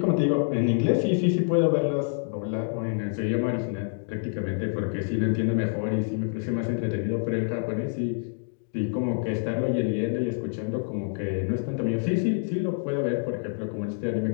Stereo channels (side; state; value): right; silent; digital silence